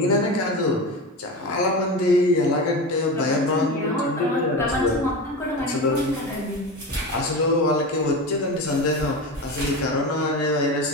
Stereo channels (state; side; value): normal; both; correlation 0.25